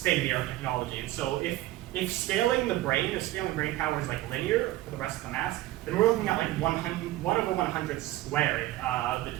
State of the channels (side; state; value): left; quieter; 16.2 dB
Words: technology. And so if scaling the brain, power is like linear for the rest of the mass, then we're looking at like 1/100 squared, the